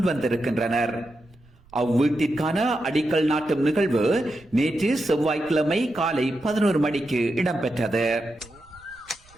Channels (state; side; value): noise; right; rumble, 28 dB below the sound